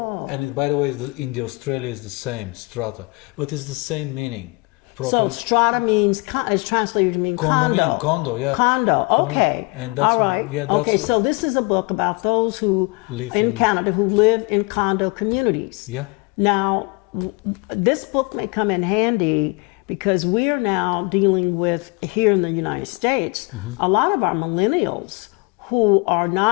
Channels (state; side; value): quieter; right; 28.7 dB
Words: And by the way, in the Australia is the same, strata, but it's the same meaning. So strata means, is translated to mean condo. Condominium, condo, yeah. Condo, okay. And that's all right. yeah, that's okay, so this is a book about those who Live in in- Canada who live in condo communities. Yeah. Now, this book may come in handy because we are now dealing with, here in the United States, Mm-hmm. a lot of our millennials who are